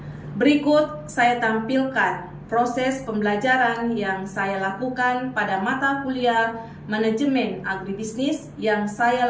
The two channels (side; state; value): both; identical; correlation 1.00